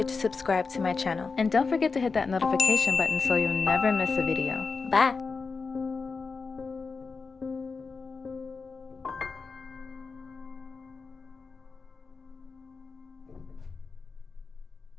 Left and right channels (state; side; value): quieter; right; 4.6 dB